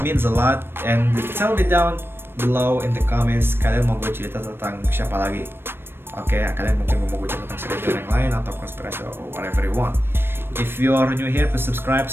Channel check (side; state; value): left; late; 0.11 ms